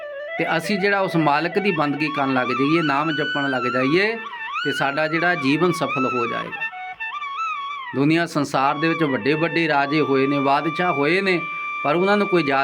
ਤੇ ਅਸੀਂ ਜਿਹੜਾ ਉਸ ਮਾਲਕ ਦੀ ਬੰਦਗੀ ਕਰਨ ਲੱਗ ਜਾਈਏ, ਨਾਮ ਜਪਣ ਲੱਗ ਜਾਈਏ, ਤੇ ਸਾਡਾ ਜਿਹੜਾ ਜੀਵਨ ਸਫਲ ਹੋ ਜਾਏਗਾ। ਦੁਨੀਆ ਸੰਸਾਰ ਦੇ ਵਿੱਚ ਵੱਡੇ ਵੱਡੇ ਰਾਜੇ ਹੋਏ ਨੇ, ਬਾਦਸ਼ਾਹ ਹੋਏ ਨੇ, ਪਰ ਉਹਨਾਂ ਨੂੰ ਕੋਈ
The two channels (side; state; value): both; identical; correlation 1.00